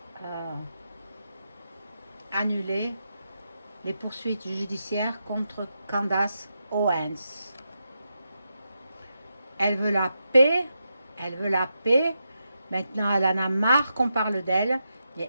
annuler les poursuites judiciaires contre Candace Owens? Elle veut la paix, elle veut la paix. Maintenant, elle en a marre qu'on parle d'elle.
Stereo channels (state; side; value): inverted; both; correlation -0.86